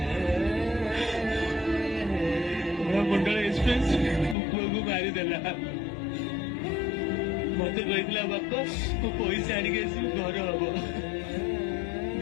ମୁଣ୍ଡଳ ଏକ୍ସପ୍ରେସ ପୁଅକୁ ମାରିଦେଲା ମତେ କହିଥିଲା ବାପା ମୁଁ ପଇସା ଆଣିକି ଆସିବି ଘର ହବ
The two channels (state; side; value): drops out; right; at 4.4 s